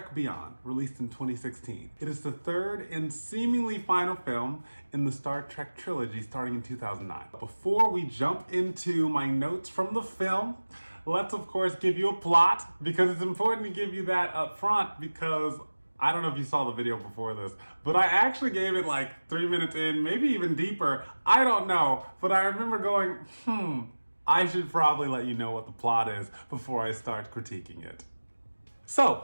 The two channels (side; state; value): both; inverted; correlation -1.00